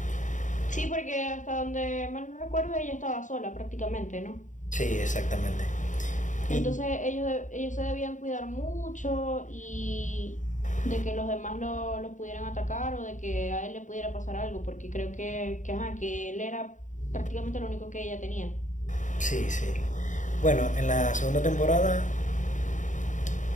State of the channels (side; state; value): right; late; 0.36 ms